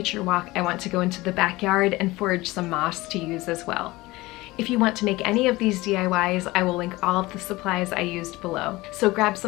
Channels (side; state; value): right; quieter; 20.2 dB